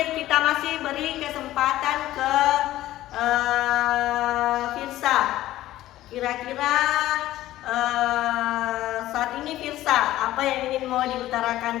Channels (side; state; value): right; quieter; 14.9 dB